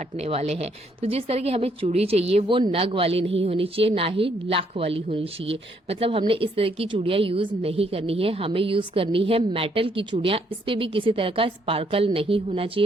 वाले हैं। तो जिस तरह की हमें चूड़ी चाहिए वो नग वाली नहीं होनी चाहिए, ना ही लाख वाली होनी चाहिए। मतलब हमने इस तरह की चूड़ियां यूज नहीं करनी है, हमें यूज करनी है मेटल की चूड़ियां। इस पे भी किसी तरह का स्पार्कल नहीं होना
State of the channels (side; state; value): both; normal; correlation 0.70